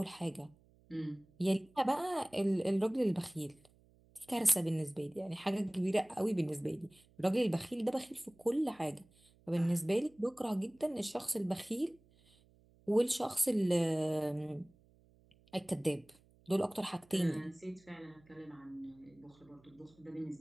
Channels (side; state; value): right; noise; hum, 30 dB below the sound